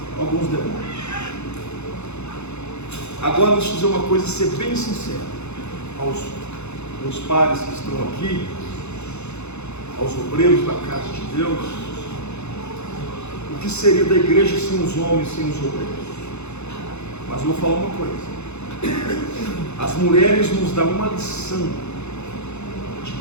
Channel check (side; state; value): right; late; 0.81 ms